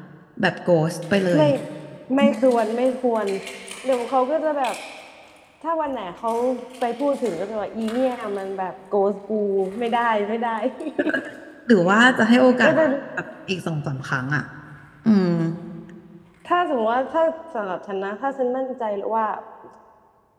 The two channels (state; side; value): identical; both; correlation 1.00